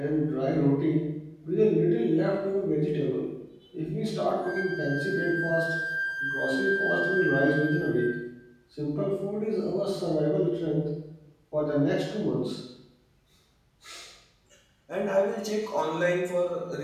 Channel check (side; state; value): both; identical; correlation 1.00